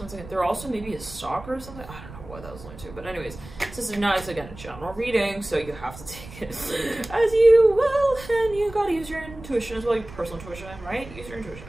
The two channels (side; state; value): right; noise; rumble, 16 dB below the sound